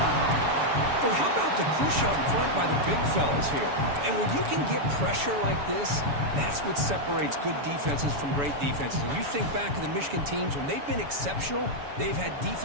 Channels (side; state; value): left; late; 7.0 ms